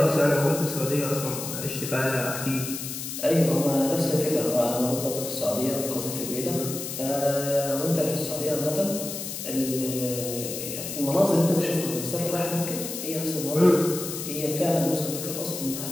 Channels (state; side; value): noise; left; hiss, 7 dB below the sound